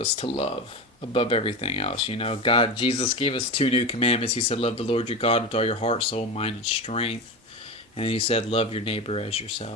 to love above everything else. Jesus gave us two new commandments. He said, "Love the Lord your God with all your heart, soul, mind, and strength." And then he said, "Love your neighbor as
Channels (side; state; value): both; normal; correlation 0.23